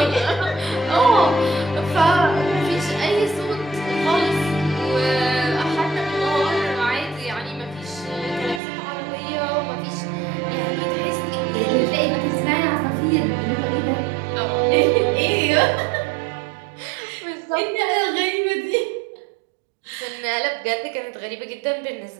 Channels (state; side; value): drops out; left; at 8.6 s